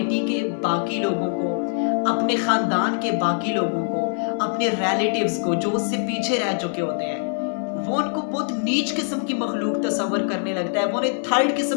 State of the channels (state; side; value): silent; right; 58 dB below the other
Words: के बाकी लोगों को, अपने खानदान के बाकी लोगों को, अपने रिलेटिव्स को जो उससे पीछे रह चुके होते हैं, वो उनको बहुत नीच किस्म की मखलूक तस्वर करने लगता है, वो उन्हें थर्ड